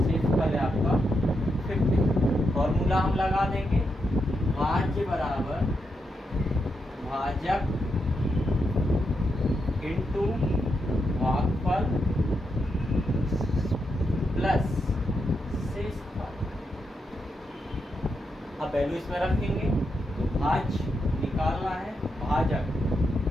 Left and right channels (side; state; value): both; normal; correlation 0.84